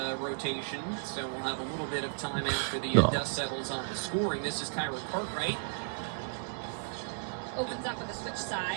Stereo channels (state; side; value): silent; left; digital silence